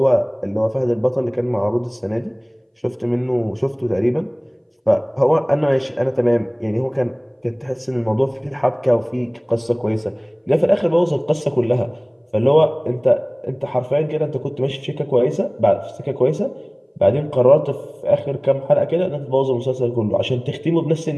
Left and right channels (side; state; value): both; identical; correlation 1.00